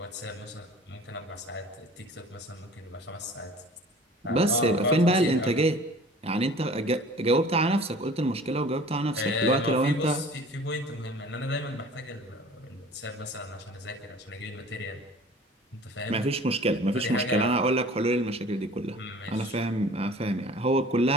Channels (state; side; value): normal; both; correlation 0.46